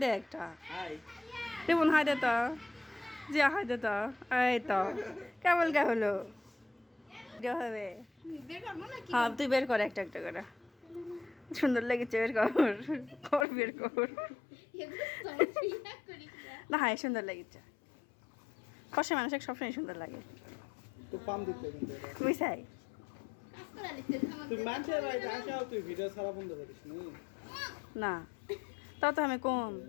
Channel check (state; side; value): drops out; right; at 13.5 s